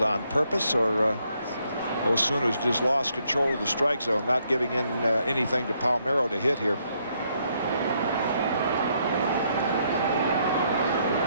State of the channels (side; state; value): both; inverted; correlation -0.73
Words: on purpose or Osuna's just lost control of the strike zone, not giving in anything to Palmeiro to hit here.